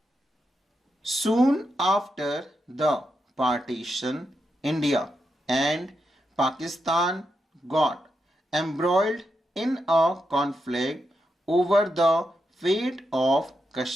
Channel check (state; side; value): normal; both; correlation 0.85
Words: Soon after the partition, India and Pakistan got embroiled in a conflict over the fate of